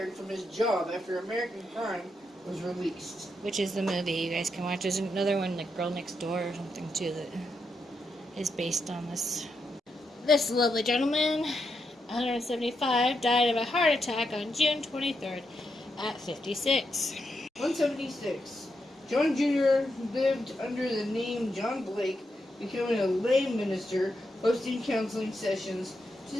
from his job after American Crime was released. Which is the movie you guys can watch. There's another one, like Girl Next Door or something, too, that is based on this. This lovely gentleman, 175, died of a heart attack on June 23rd at 56. 176. John Jr. lived under the name John Blake, becoming a lay minister, hosting counseling sessions to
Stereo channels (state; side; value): normal; both; correlation 0.83